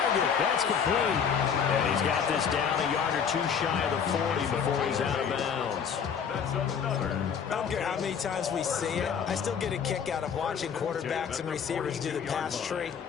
That's complete. And he's got this down a yard or 2 shy of the 40 before he's out of bounds. That's another. I don't care how many times we see it. I still get a kick out of watching quarterbacks and receivers do the pass tree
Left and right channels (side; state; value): right; quieter; 7.1 dB